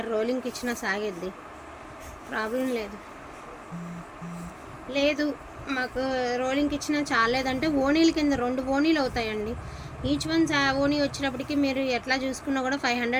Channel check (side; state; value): both; identical; correlation 1.00